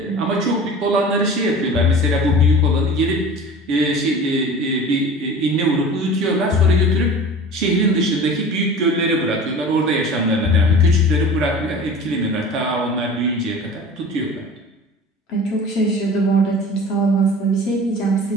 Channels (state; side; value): normal; both; correlation 0.39